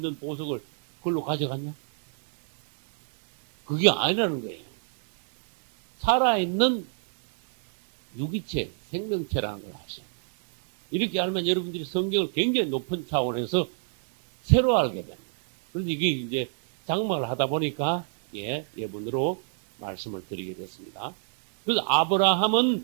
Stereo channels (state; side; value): silent; left; 59 dB below the other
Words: 보석을 그걸로 가져갔냐? 그게 아니라는 거예요. 살아있는 유기체, 생명체라는 걸 아셔요. 이렇게 알면 여러분들이 성경을 굉장히 높은 차원에서 새로 알게 됩니다. 그래서 이게 이제 장막을 하다 보니까, 예문으로 말씀을 드리게 됐습니다. 그래서